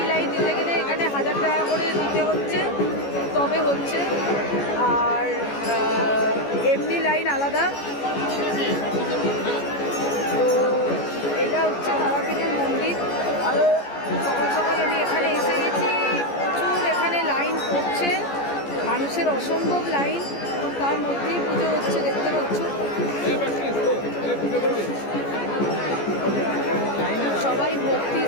লাইন দিতে গেলে এখানে 1000 টাকা করে দিতে হচ্ছে, তবে হচ্ছে। আর এমনি লাইন আলাদা। তো এটা হচ্ছে তারাপীঠের মন্দির। আরও সকাল সকাল আমি এখানে এসে গেছি, প্রচুর এখানে লাইন পড়ছে, মানুষের অসম্ভব লাইন। তার মধ্যেই পুজো হচ্ছে, দেখতে পাচ্ছ। সবাই ভক্তি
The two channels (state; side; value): late; right; 14 ms